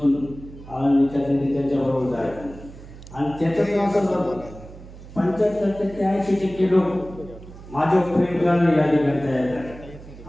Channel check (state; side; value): noise; right; hum, 17 dB below the sound